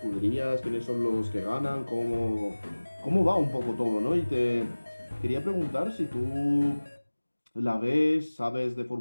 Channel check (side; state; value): both; inverted; correlation -1.00